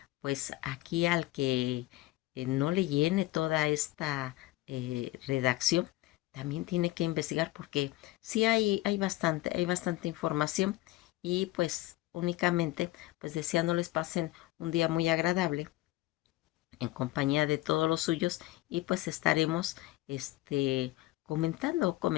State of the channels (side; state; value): right; quieter; 18.0 dB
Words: pues aquí al que no le llene toda esta redacción, también tiene que investigar porque sí hay bastante información y pues únicamente pues deseándoles pasen un día muy agradable en compañía de todos los suyos y pues estaremos